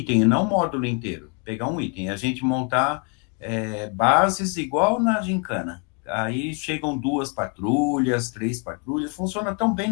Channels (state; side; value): quieter; right; 35.4 dB